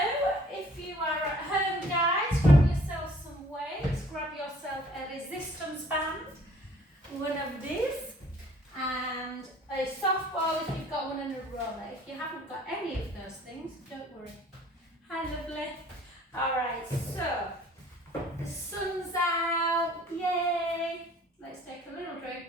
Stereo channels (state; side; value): normal; both; correlation 0.55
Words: if you are at home, guys, grab yourself some weights, grab yourself a resistance band, one of these, and a softball if you've got one, and a roller. If you haven't got any of those things, don't worry. Hi, lovely. Alright, so the sun's out, yay! Let's take a little